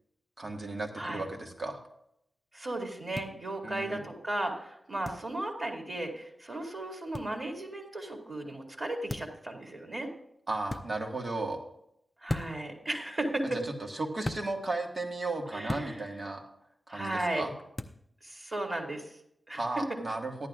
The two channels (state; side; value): normal; both; correlation 0.92